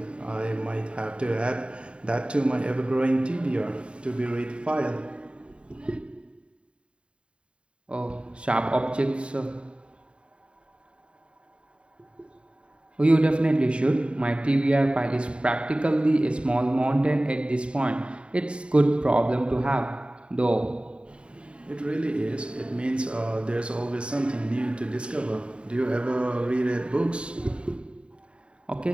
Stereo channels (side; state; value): left; late; 0.056 ms